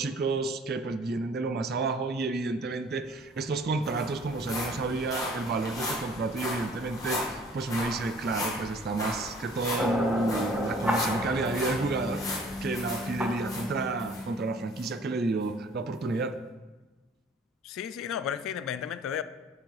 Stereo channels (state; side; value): normal; both; correlation 0.53